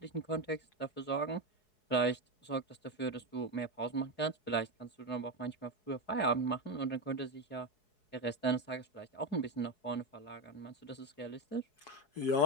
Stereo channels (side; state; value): right; late; 4.7 ms